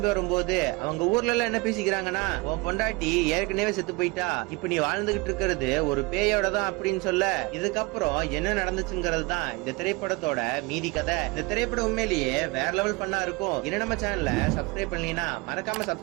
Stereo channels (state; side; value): quieter; left; 25.4 dB